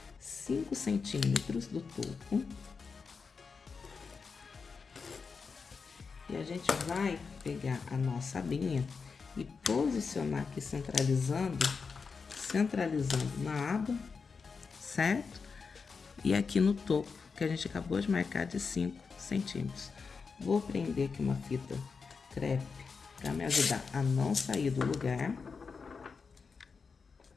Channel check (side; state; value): right; quieter; 5.1 dB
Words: 5 centímetros do topo. E a gente vai pegar a nossa abinha e posicionar aqui, centralizando na aba, certo? E aqui no topo, que a gente acabou de marcar de 5 centímetros. Vou prender aqui uma fita crepe para me ajudar a não sair do lugar.